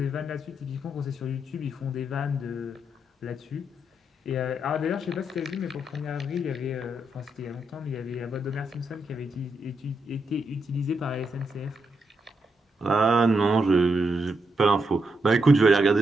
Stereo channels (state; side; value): normal; both; correlation 0.82